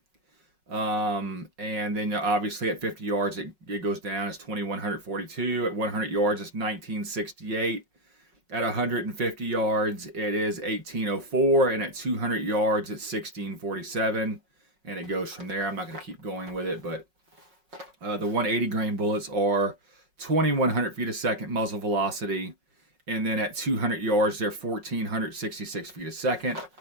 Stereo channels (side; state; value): left; late; 5.4 ms